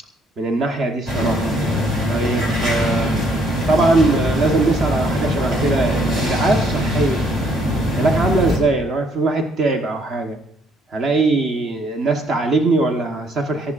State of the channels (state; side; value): normal; both; correlation 0.67